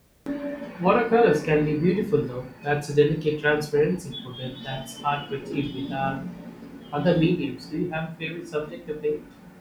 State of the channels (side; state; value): both; identical; correlation 1.00